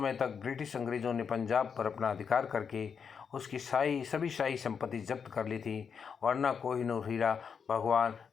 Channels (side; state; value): right; quieter; 6.5 dB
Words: तक ब्रिटिश अंग्रेज़ों ने पंजाब पर अपना अधिकार करके उसकी सभी शाही संपत्ति जब्त कर ली थी, वरना कोहिनूर हीरा भगवान